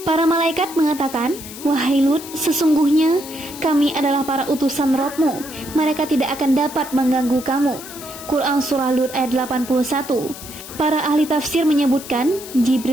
Para malaikat mengatakan, wahai Lut, sesungguhnya kami adalah para utusan Rabb-mu, mereka tidak akan dapat mengganggu kamu. Quran Surah Lut ayat 81. Para ahli tafsir menyebutkan,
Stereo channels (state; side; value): noise; left; hiss, 14 dB below the sound